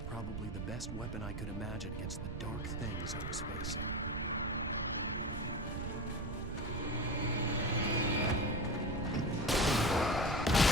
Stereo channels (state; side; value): noise; right; rumble, 6 dB below the sound